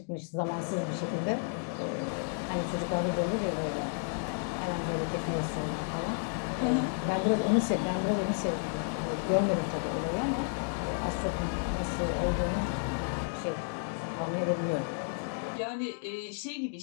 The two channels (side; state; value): right; silent; 56 dB below the other